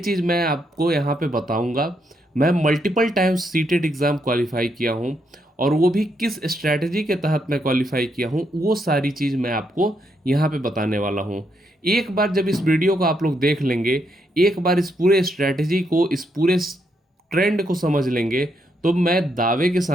मैं आपको यहाँ पे बताऊँगा। मैं multiple times CTET exam qualify किया हूँ और वो भी किस स्ट्रैटेजी के तहत मैं क्वालिफाई किया हूँ, वो सारी चीज़ मैं आपको यहाँ पे बताने वाला हूँ। एक बार जब इस वीडियो को आप लोग देख लेंगे, एक बार इस पूरे स्ट्रैटेजी को, इस पूरे ट्रेंड को समझ लेंगे, तो मैं दावे के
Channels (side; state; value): both; normal; correlation 0.77